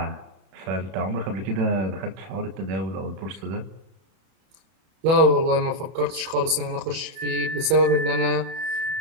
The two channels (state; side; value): late; left; 31 ms